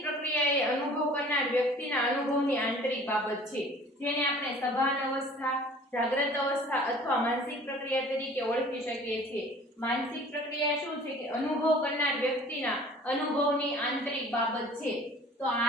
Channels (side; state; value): both; normal; correlation 0.48